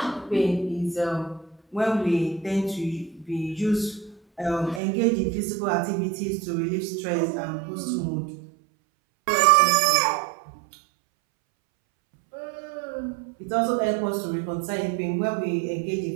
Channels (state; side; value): drops out; left; at 4.8 s